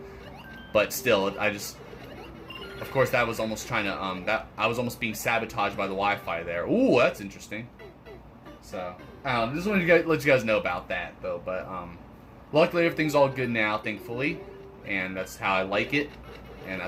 But still, of course, that was almost trying to I was almost being sabotaged by the Wi-Fi there. Ooh, that's interesting. So just wanted to let you guys know about that though. But luckily everything's all good now, thankfully, and that's how I like it. And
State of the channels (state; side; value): identical; both; correlation 1.00